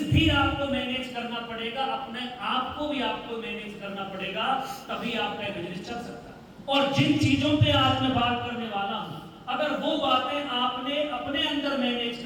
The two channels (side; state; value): both; identical; correlation 1.00